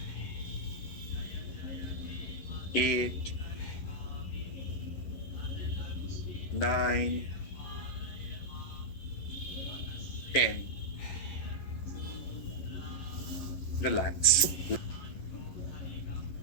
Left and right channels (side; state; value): right; late; 11 ms